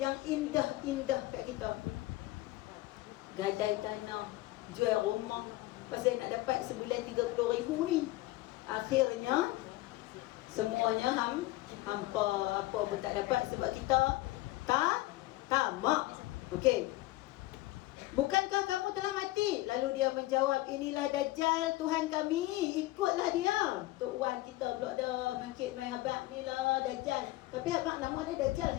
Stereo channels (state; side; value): quieter; right; 18.2 dB